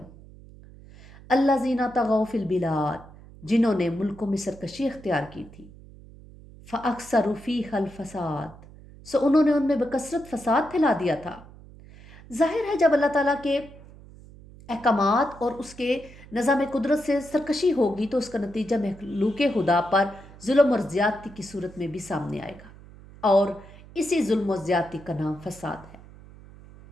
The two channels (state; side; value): noise; right; hum, 20 dB below the sound